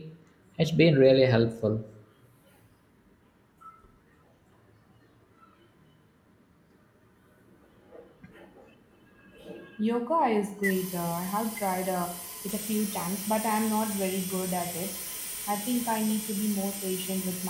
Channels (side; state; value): both; identical; correlation 1.00